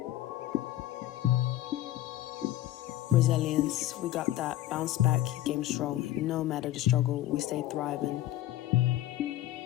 Resilience, we got that, bounce back, game strong. No matter the struggle, we stay thriving.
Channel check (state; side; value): quieter; right; 14.5 dB